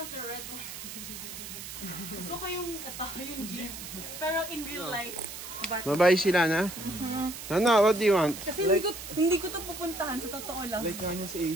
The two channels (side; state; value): right; noise; hiss, 10 dB below the sound